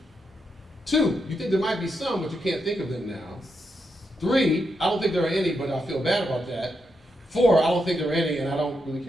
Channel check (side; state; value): both; normal; correlation 0.83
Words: Two, you think there might be some, but you can't think of them now. Three, I don't think there are any, but I feel bad about that. Four, I don't think there are any, and I don't really